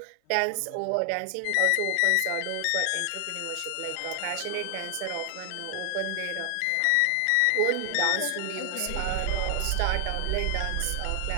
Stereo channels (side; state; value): both; different; correlation 0.00